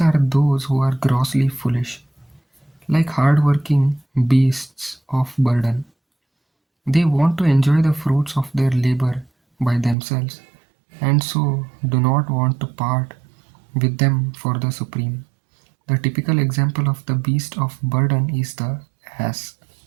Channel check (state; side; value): drops out; left; at 10.0 s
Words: are those who are grossly foolish, like hard-working beasts of burden. They want to enjoy the fruits of their labor by themselves and so do not want to part with them for the supreme. The typical example of the beast of burden is the ass.